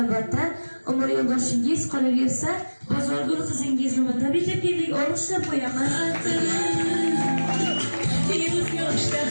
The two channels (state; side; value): inverted; both; correlation -1.00